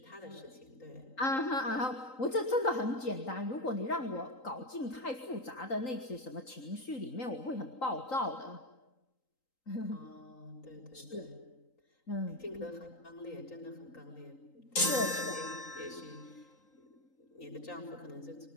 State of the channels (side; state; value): right; late; 3.8 ms